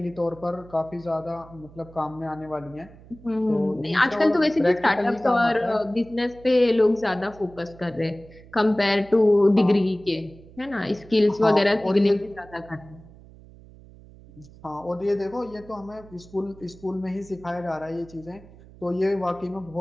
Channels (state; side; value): noise; right; hum, 22 dB below the sound